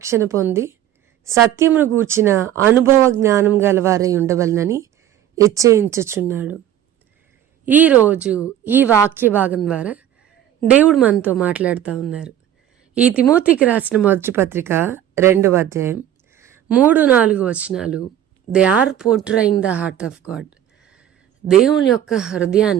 పొంది సత్యమును గూర్చిన అనుభవ జ్ఞానం గలవారై ఉండవలనని హెచ్చరించుచున్నాడు. ఈరోజు ఈ వాక్య భాగం ద్వారా దేవుడు మనతో మాట్లాడుతూ ఉన్నారు. ఈ తిమోతికి రాసిన మొదటి పత్రిక 2వ అధ్యాయం 3-4 వచనాలు they are portraying the heart of God. దేవుని యొక్క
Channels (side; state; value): left; quieter; 11.1 dB